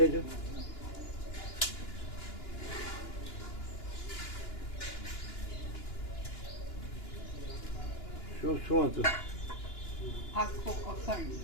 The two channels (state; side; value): late; right; 2.9 ms